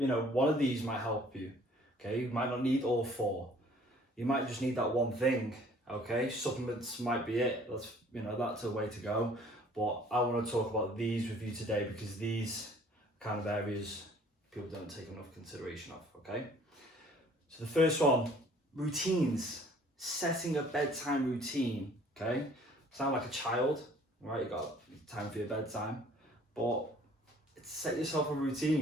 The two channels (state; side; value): normal; both; correlation 0.55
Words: of these might help you, okay? You might not need all 4. You might just need that one thing, okay? Supplements might be it. That's a way to go. But I want to talk about these with you today, because these kind of areas people don't take enough consideration of, okay? So the first one, routines. Setting a bedtime routine, okay? Sound like a child, right? You got time for your bedtime, but set yourself a